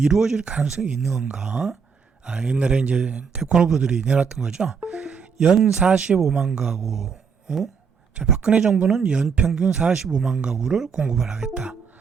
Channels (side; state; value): left; quieter; 6.0 dB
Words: 가능성이 있는 건가? 옛날에 이제 대권 후보들이 내놨던 거죠. 연 45만 가구. 자, 박근혜 정부는 연 평균 45만 가구를 공급을 하겠다.